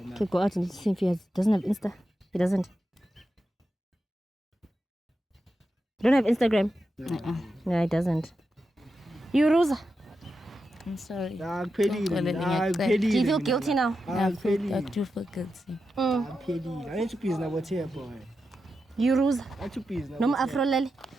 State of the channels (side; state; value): both; normal; correlation 0.89